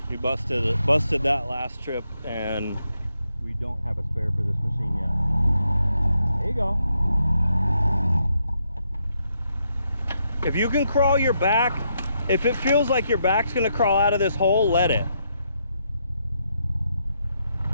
We busted that last trip, and we don't have a spare for this machine yet. There you go. If you can crawl your back, if it feels like your back's gonna crawl out of this hole, let it.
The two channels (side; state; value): both; inverted; correlation -0.79